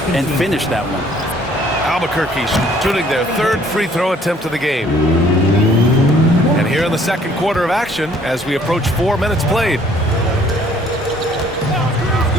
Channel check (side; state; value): both; normal; correlation 0.60